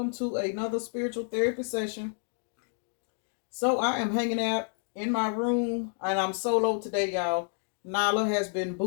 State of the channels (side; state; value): right; silent; 58 dB below the other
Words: to another spiritual therapy session. So I am hanging out in my room and I'm solo today, y'all. Nala has been